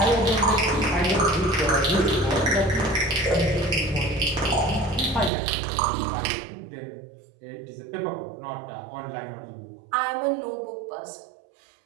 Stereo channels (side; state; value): left; drops out; at 5.3 s